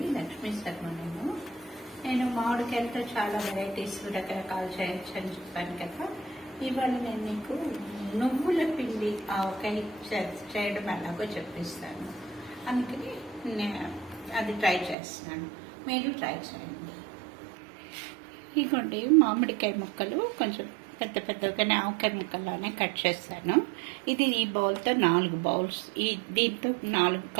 లక్ష్మీ శర్మ. నేను మామిడికాయలతో చాలా వెరైటీస్ రకరకాలు చేయొచ్చు అని చెప్పాను కదా. ఇవాళ నేను మీకు నువ్వుల పిండి ఆవకాయ చేయడం ఎలాగో చెప్పిస్తాను. అందుకని నేను అది ట్రై చేస్తున్నాను, మీరు ట్రై చేయండి. ఇదిగోండి మామిడికాయ ముక్కలు కొంచెం పెద్ద పెద్దగానే ఆవకాయ ముక్కల్లానే కట్ చేస్తాను. ఇది ఈ బౌల్తో 4 బౌల్స్, దీంతో 4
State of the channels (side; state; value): left; drops out; at 15.0 s